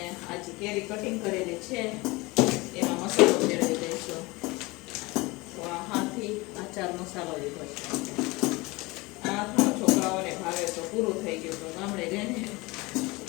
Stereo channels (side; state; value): right; quieter; 23.4 dB